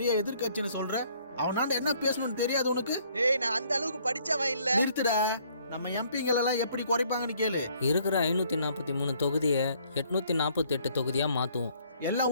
எதிர்கட்சின்னு சொல்ற, அவனாண்ட என்ன பேசணும்னு தெரியாது உனக்கு? ஏய், நான் அந்த அளவுக்கு படிச்சவன் இல்ல. நிறுத்துடா. நம்ம எம்பிங்களெல்லாம் எப்படி குறைப்பாங்கன்னு கேளு. இருக்கிற 543 தொகுதியை 848 தொகுதியா மாத்துவோம்.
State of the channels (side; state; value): both; inverted; correlation -0.63